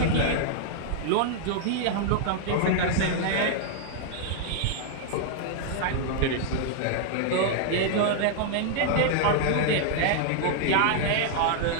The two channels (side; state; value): both; different; correlation -0.01